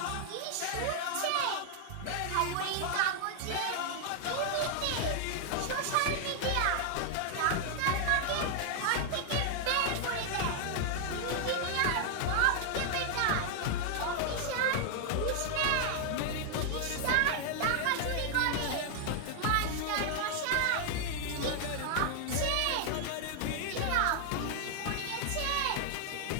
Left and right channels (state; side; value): different; both; correlation 0.00